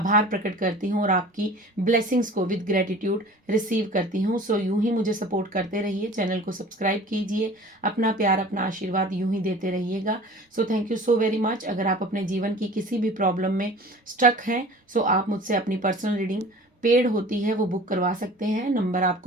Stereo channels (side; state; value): both; normal; correlation 0.43